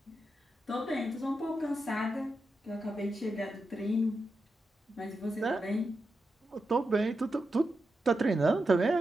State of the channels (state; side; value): normal; both; correlation 0.88